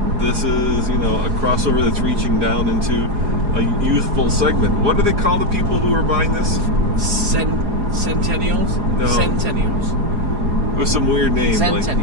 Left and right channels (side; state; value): left; late; 4.9 ms